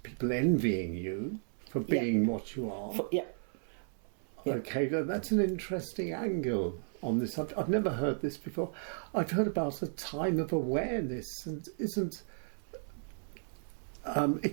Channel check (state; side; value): silent; left; 55 dB below the other